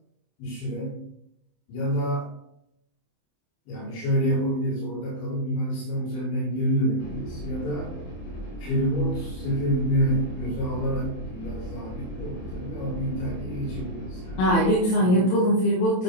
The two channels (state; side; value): late; right; 27 ms